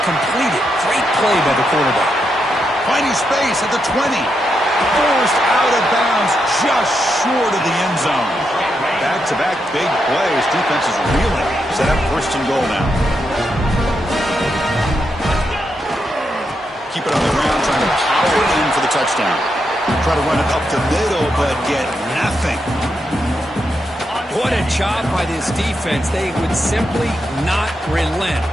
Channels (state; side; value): normal; both; correlation 0.83